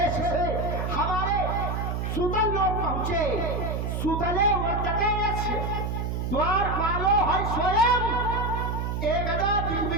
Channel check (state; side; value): noise; right; hum, 2 dB below the sound